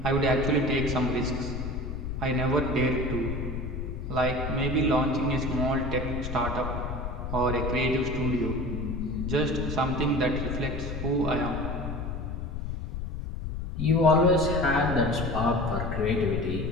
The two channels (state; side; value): noise; left; rumble, 5 dB below the sound